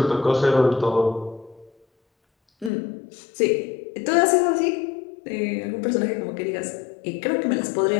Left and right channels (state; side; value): drops out; right; at 2.7 s